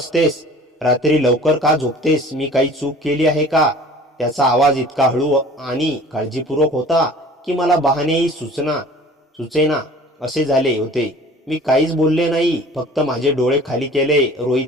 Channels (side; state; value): both; normal; correlation 0.46